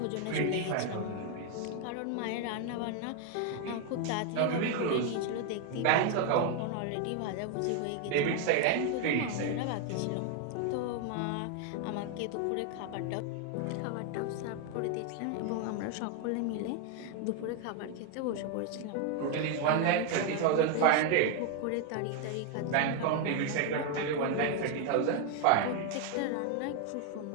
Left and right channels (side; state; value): both; different; correlation 0.01